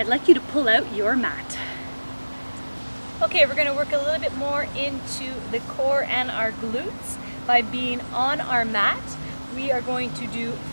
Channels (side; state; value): both; inverted; correlation -1.00